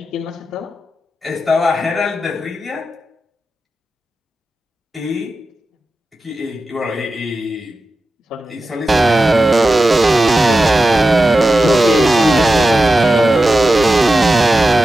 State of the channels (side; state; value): both; normal; correlation 0.92